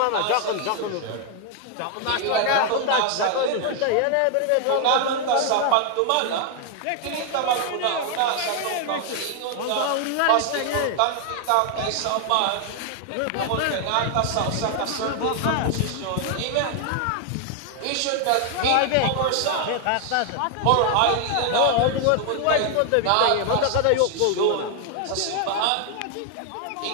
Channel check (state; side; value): different; both; correlation 0.00